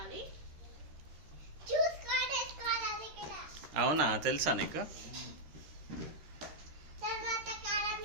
అవునా, తెలుసా నీకు?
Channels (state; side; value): late; left; 13 ms